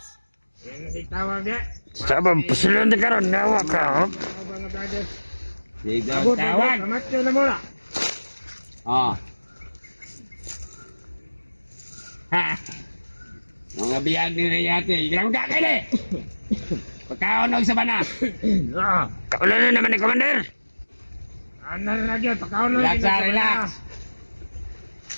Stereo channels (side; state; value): both; inverted; correlation -1.00